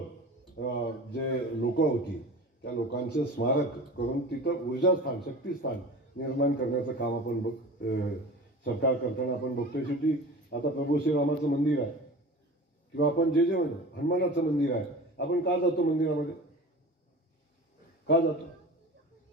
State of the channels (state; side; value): normal; both; correlation 0.36